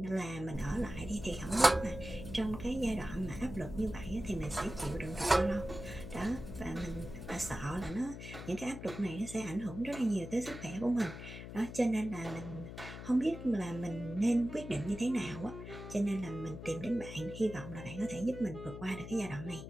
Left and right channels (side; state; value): left; noise; hum, 10 dB below the sound